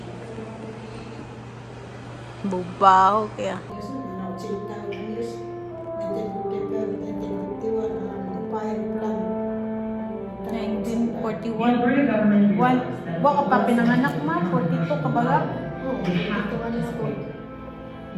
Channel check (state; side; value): identical; both; correlation 1.00